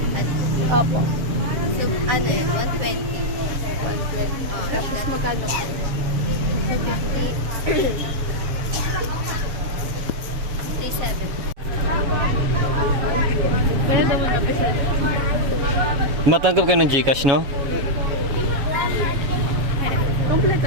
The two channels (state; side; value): late; left; 7.3 ms